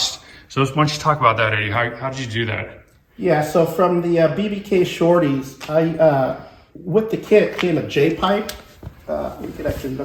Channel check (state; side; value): identical; both; correlation 1.00